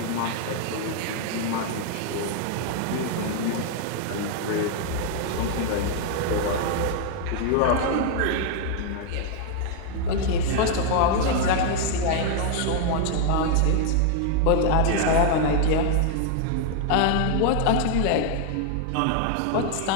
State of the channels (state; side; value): different; both; correlation 0.00